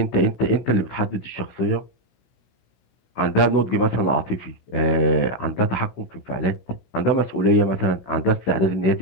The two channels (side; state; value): right; late; 16 ms